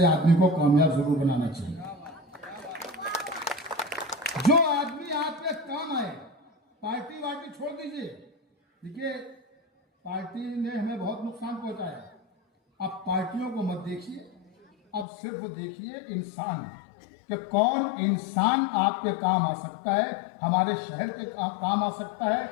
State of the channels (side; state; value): right; drops out; at 15.1 s